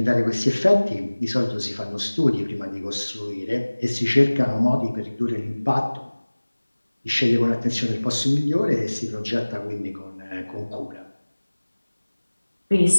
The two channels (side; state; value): both; inverted; correlation -1.00